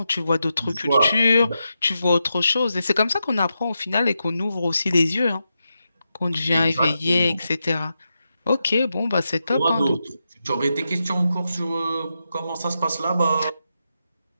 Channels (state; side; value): inverted; both; correlation -0.87